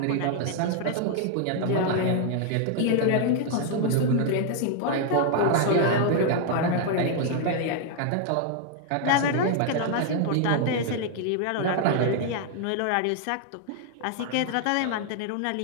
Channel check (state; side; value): different; both; correlation 0.00